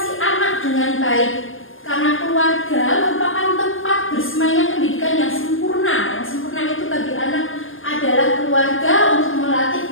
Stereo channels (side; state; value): right; late; 0.59 ms